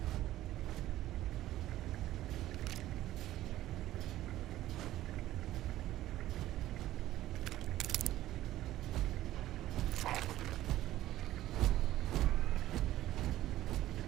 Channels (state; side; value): quieter; left; 14.5 dB